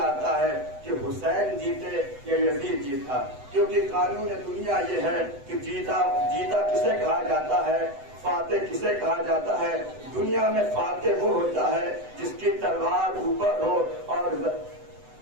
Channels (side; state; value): left; late; 8.0 ms